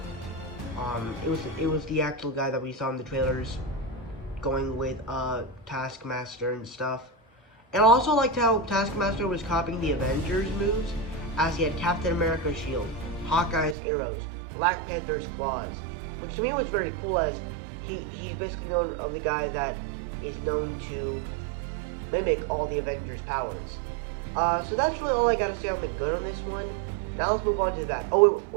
It was the actual guy that we saw in the trailers, going with Taskmaster and stuff. And I also liked how Taskmaster was copying the Avengers moves, as he had Captain America's shield, Hawkeye's arrows, Black Panther's claws, which to me was very cool, as he's basically known of the guy that is known to mimic all the Avengers' powers. So that's really all I gotta say on the good on this one. Now let's move on to the bad. Oh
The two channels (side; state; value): left; drops out; at 13.8 s